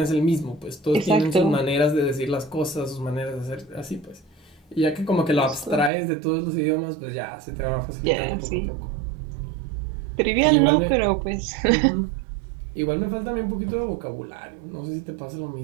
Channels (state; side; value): drops out; left; at 5.9 s